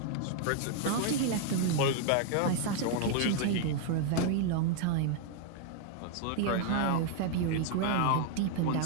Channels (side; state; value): both; different; correlation 0.00